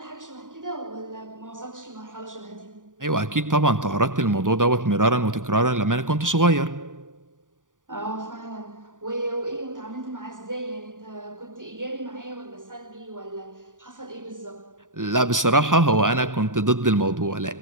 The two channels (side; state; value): left; late; 0.88 ms